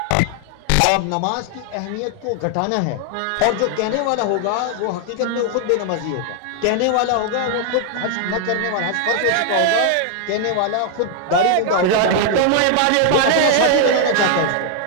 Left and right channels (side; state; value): both; different; correlation 0.00